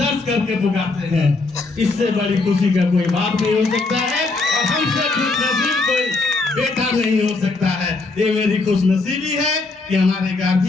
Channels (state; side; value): quieter; right; 3.6 dB